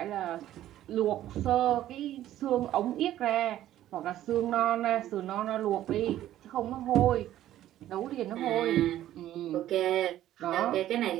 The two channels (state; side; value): quieter; left; 13.0 dB